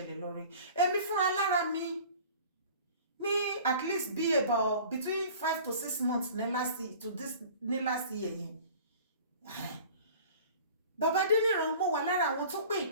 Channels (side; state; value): both; inverted; correlation -0.44